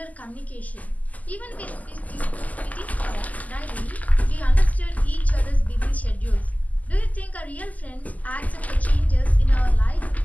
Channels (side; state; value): right; late; 0.077 ms